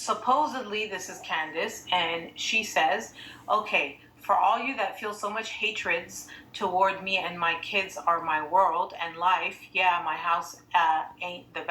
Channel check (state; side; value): identical; both; correlation 1.00